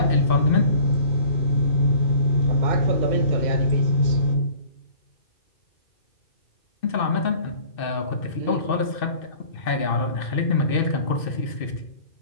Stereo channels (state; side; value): late; right; 2.6 ms